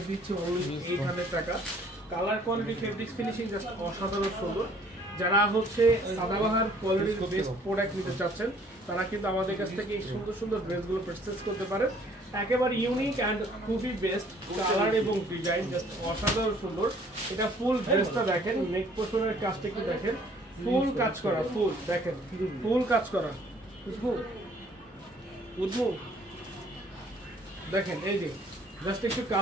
দিচ্ছে অনলি 800 টাকা। Colour quality fabrics finishing just অসাধারণ সুন্দর। যারা হচ্ছে সাদাবাহার কোয়ালিটির বেস্ট প্রোডাক্ট নিতে চাচ্ছেন তারা কিন্তু আমাদের কাছ থেকে এই সুন্দর সুন্দর ড্রেসগুলো পারচেজ করতে পারেন। একেবারে ইউনিক অ্যান্ড খুবই বেস্ট কালার এবং ডিজাইন জাস্ট অসাধারণ সুন্দর। এটা ফুল ড্রেসটা দেখেন, নেক পোর্শনের কাজটা একটু দেখেন, ফুল কাজ করা, ফুল দেখেন, ফুল কাজ করা, বুঝবো দেখেন, এই যে জাস্ট একটু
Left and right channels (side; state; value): both; normal; correlation 0.58